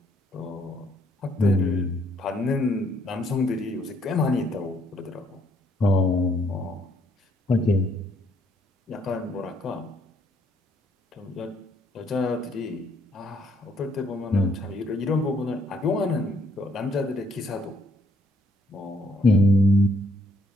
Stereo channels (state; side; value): normal; both; correlation 0.69